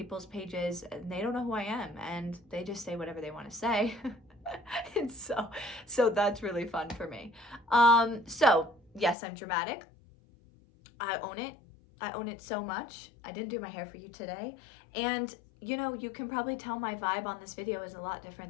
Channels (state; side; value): drops out; right; at 9.2 s